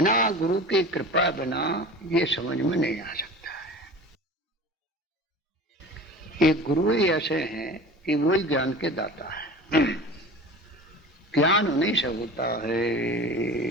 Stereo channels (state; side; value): normal; both; correlation 0.37